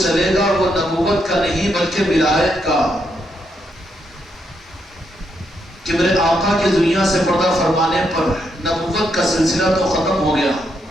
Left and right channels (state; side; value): normal; both; correlation 0.79